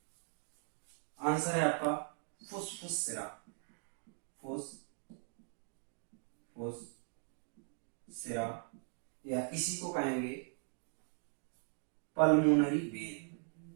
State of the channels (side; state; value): left; silent; 51 dB below the other